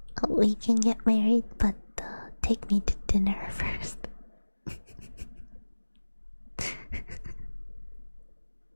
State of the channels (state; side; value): inverted; both; correlation -1.00